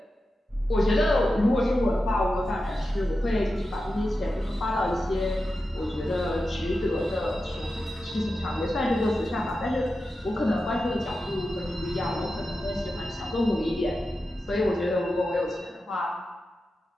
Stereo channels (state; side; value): normal; both; correlation 0.91